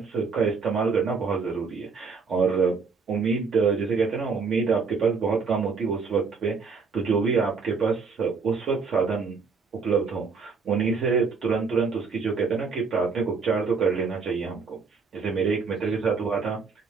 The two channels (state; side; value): quieter; left; 5.0 dB